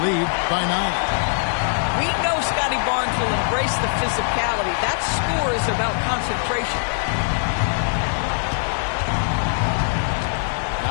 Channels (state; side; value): silent; right; digital silence